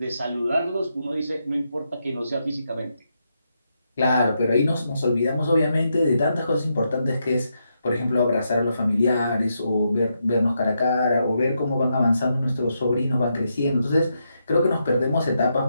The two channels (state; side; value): inverted; both; correlation -0.82